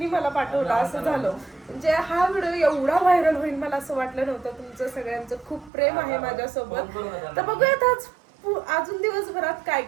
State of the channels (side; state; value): left; drops out; at 5.7 s